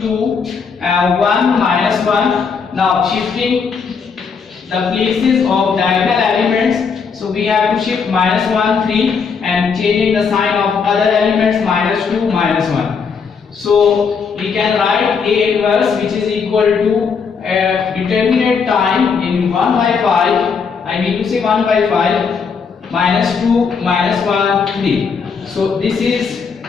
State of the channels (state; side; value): quieter; right; 5.8 dB